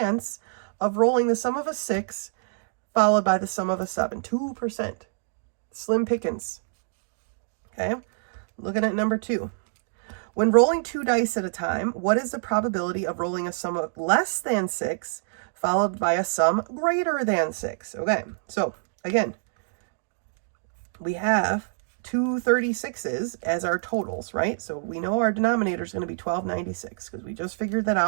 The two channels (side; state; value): left; silent; digital silence